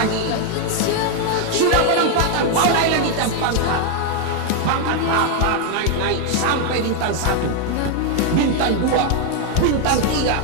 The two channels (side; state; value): both; different; correlation 0.01